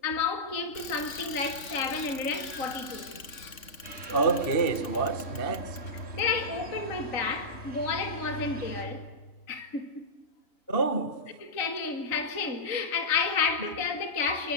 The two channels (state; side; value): late; right; 3.6 ms